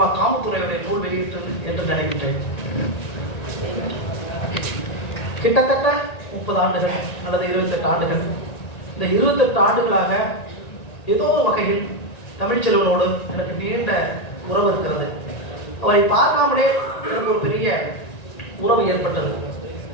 காமத்துறையுடைய நூல் வெளியிட்டு என்று நினைக்கின்றேன். கிட்டத்தட்ட 30 ஆண்டுகள் அல்லது 28 ஆண்டுகள், இந்த 28 ஆண்டுகளாக ஏதோ வகையில் தமிழ்ச்செல்வனோடு எனக்கு நீண்ட உறவு இருக்கிறது. அவரை பார்க்காமலே எனக்கு ஒரு பெரிய உறவு ஏற்பட்டது.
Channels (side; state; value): right; late; 1.9 ms